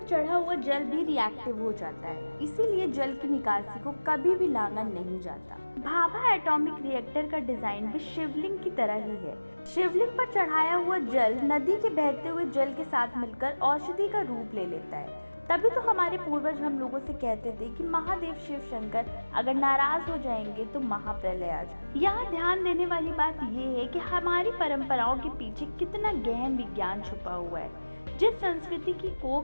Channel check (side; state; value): both; inverted; correlation -1.00